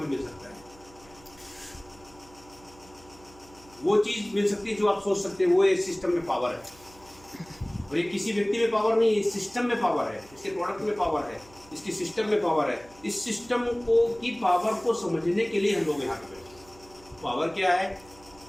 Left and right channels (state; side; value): noise; right; hum, 24 dB below the sound